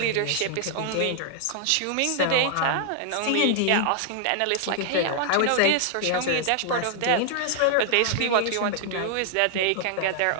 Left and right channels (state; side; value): different; both; correlation 0.00